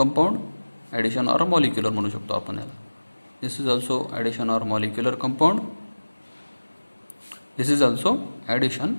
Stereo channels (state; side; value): inverted; both; correlation -1.00